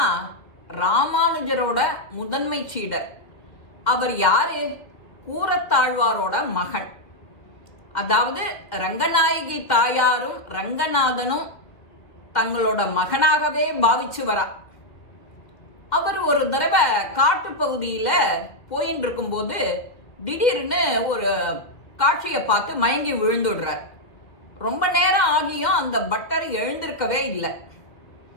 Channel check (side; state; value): right; late; 2.1 ms